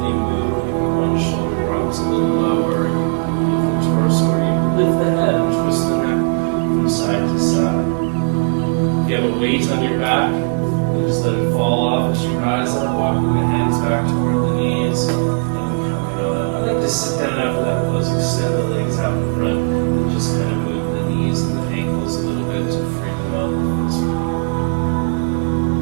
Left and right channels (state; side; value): silent; left; 56 dB below the other